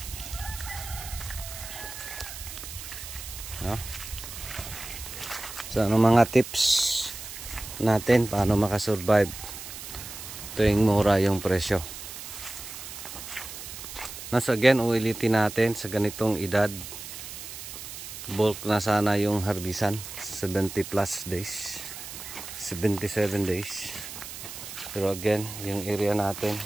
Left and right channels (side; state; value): right; noise; hiss, 11 dB below the sound